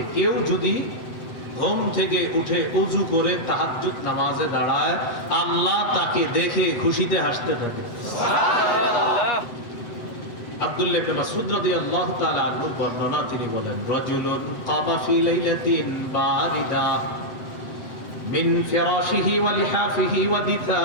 কেউ যদি ঘুম থেকে উঠে উযু করে তাহাজ্জুদ নামাজে দাঁড়ায়, আল্লাহ তাকে দেখে খুশিতে হাসতে থাকে। আব্দুল্লাহ ইবনে মাসউদ রাদিয়াল্লাহু তাআলা আনহু বর্ণনা, তিনি বলেন, রাজুলুন কামা ফি লাইলাতিন বারিদা মিন ফিরাশিহি ওয়া লিহাফিহি ওয়া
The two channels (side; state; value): right; late; 7.9 ms